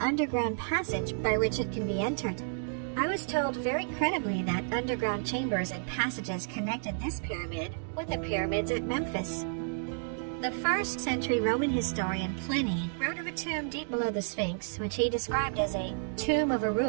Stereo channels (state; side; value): silent; left; digital silence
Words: underground passage by which it can be entered. I was told very credibly that underground chambers and passages connected this pyramid with the pyramids at Memphis. The 1st century Roman historian Pliny wrote of a tomb deep below the Sphinx, which he described as a tomb of a